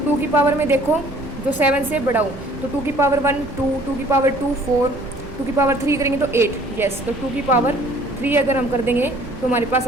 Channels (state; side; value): noise; right; rumble, 15 dB below the sound